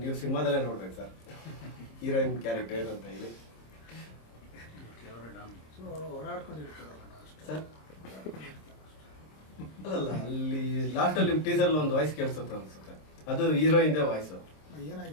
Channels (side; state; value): right; late; 26 ms